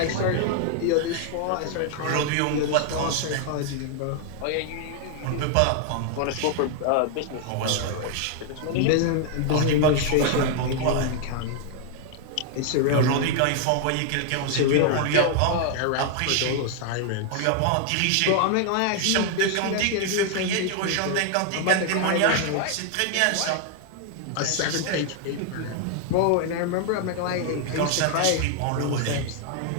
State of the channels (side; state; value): both; different; correlation 0.00